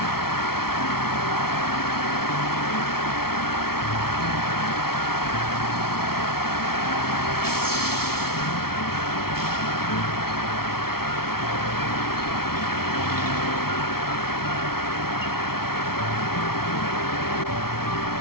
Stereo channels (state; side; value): late; right; 0.94 ms